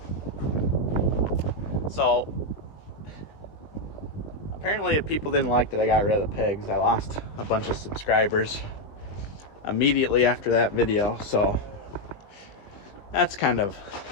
So apparently people didn't like that I got rid of the pigs. I lost a bunch of subscribers immediately after that video, so that's kind of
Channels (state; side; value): late; right; 20 ms